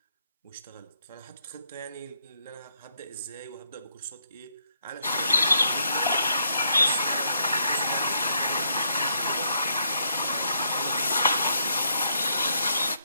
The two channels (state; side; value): inverted; both; correlation -0.76